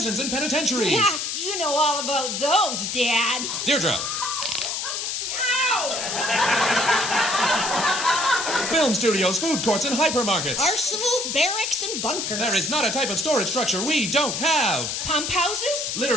and penitentiaries. Yeah, you know all about those, Dad. Deirdre. Ow! Film studios, food courts, and hypermarkets. Arsenals, barracks, and bunkers. There is not a type of storage structure we don't have. Pump houses?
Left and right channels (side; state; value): left; noise; hiss, 3 dB below the sound